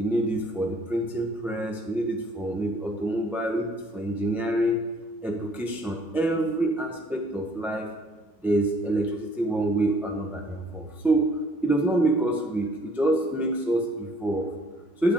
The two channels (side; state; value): both; normal; correlation 0.59